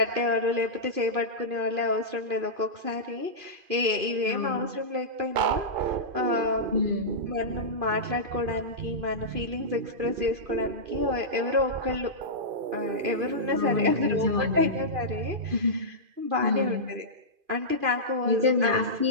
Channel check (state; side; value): late; left; 2.5 ms